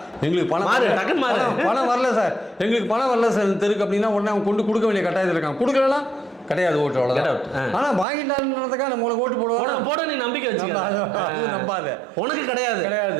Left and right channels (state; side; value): drops out; left; at 8.1 s